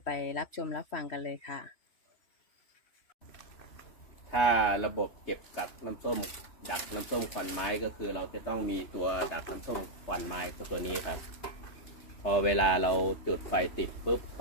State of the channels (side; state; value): right; late; 3.3 ms